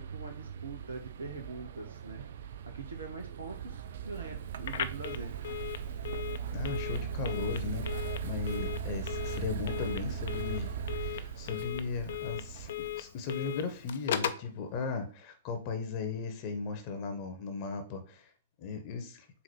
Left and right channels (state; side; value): inverted; both; correlation -0.40